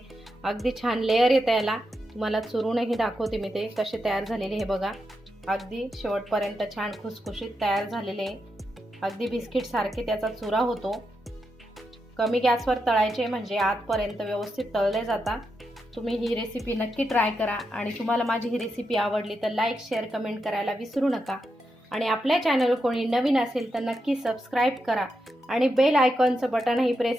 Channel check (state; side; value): normal; both; correlation 0.85